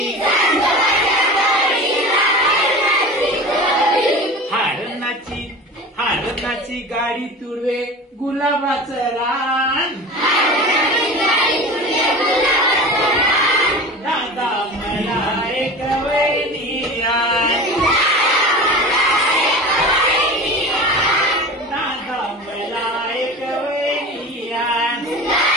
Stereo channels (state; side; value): normal; both; correlation 0.34